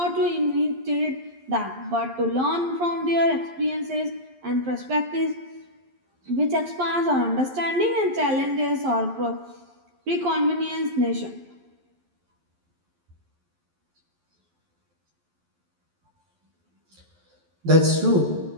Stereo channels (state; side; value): late; left; 11 ms